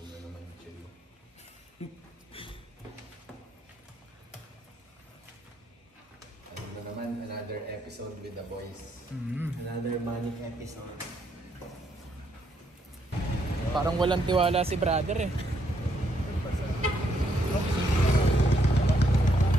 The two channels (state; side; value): normal; both; correlation 0.74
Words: na naman yung chill. Ano na naman, another episode with the boys. Another manic episode. Parang walang tiwala si brother eh.